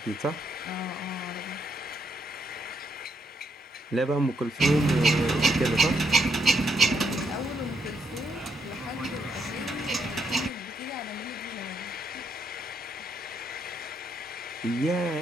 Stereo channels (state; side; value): normal; both; correlation 0.76